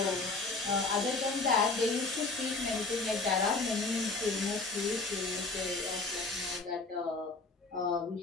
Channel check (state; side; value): quieter; right; 3.7 dB